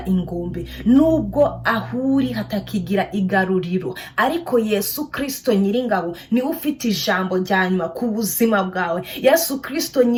ingombe, nubwo ahuri hatakigira igaruriro, ariko Yesu Kristo Nyiringabo niwe ufite ijambo rya nyuma ku buzima bwawe. Yesu Kristo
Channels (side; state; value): both; identical; correlation 1.00